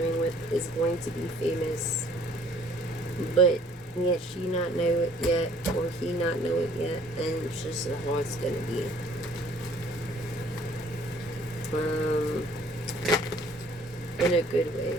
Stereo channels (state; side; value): normal; both; correlation 0.57